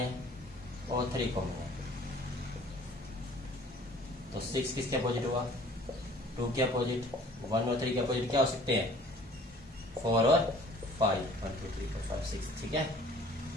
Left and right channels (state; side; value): normal; both; correlation 0.51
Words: और 3 कॉमन है, तो 6 किसके अपोजिट हुआ, 2 के अपोजिट। 1 और 3 के अपोजिट क्या हो सकते हैं, 4 और 5, 1 2 3 4 5 6, ठीक है।